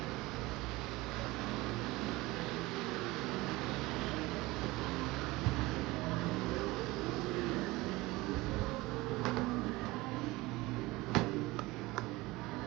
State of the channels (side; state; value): left; quieter; 20.8 dB